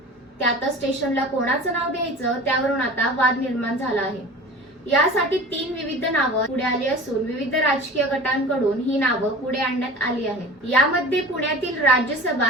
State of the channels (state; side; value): normal; both; correlation 0.38